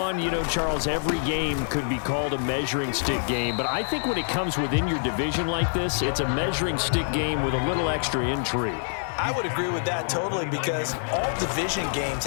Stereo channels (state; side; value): silent; right; digital silence